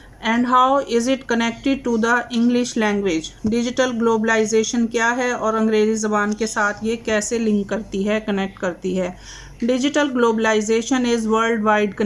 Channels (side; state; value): both; identical; correlation 1.00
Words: and how is it connected to the English language. Digital globalisation क्या है और अंग्रेज़ी ज़बान के साथ ये कैसे लिंक करती है, कनेक्ट करती है। Digital globalisation is worldwide